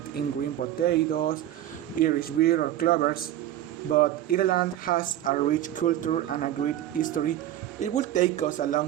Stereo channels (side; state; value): left; quieter; 12.5 dB